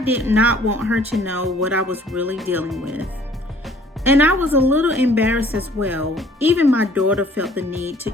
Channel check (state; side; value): normal; both; correlation 0.56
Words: not want her to know what I was really dealing with. And I was a little embarrassed as well. Even my daughter felt the need to